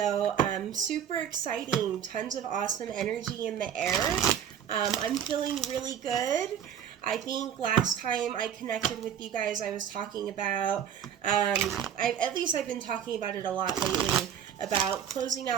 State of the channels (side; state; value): left; quieter; 9.0 dB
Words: super exciting, tons of awesome energy in the air. I'm feeling really good. I think last time I connected with you guys, I was talking about, at least I've been talking about it a lot lately, about closing